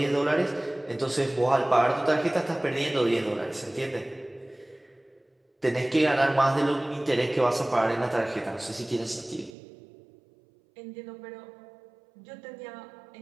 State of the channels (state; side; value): drops out; left; at 9.6 s